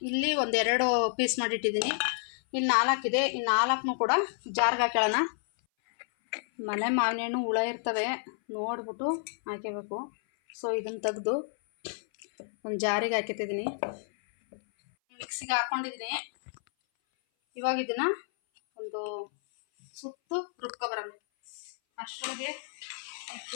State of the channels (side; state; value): right; silent; 58 dB below the other